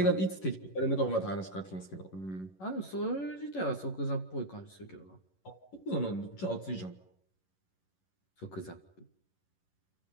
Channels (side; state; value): right; late; 11 ms